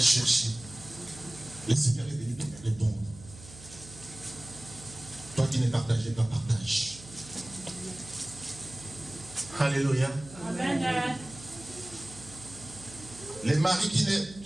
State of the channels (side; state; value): right; noise; hum, 18 dB below the sound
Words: Le Seigneur est venu te répondre. Toi qui ne partageais pas, partage. Alléluia. Amen. Les maris